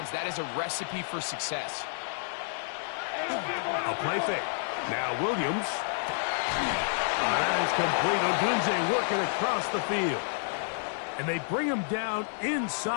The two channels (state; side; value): silent; right; digital silence